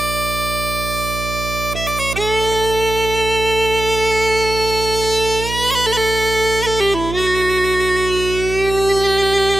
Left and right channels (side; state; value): right; noise; hum, 7 dB below the sound